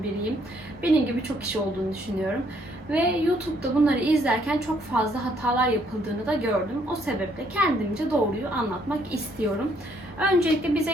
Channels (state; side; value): normal; both; correlation 0.68